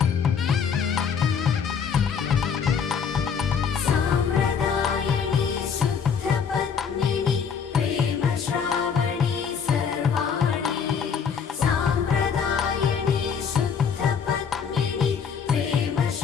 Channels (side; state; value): right; quieter; 6.7 dB